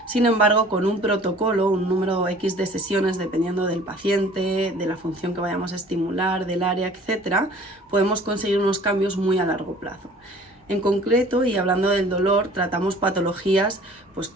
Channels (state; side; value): normal; both; correlation 0.50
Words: Sin embargo, con un protocolo, un número X de sesiones, dependiendo del paciente, de la función que vayamos a estimular, del área, etc., podemos conseguir unos cambios muy a largo plazo. En concreto, y hablando del dolor, tratamos patologías pues,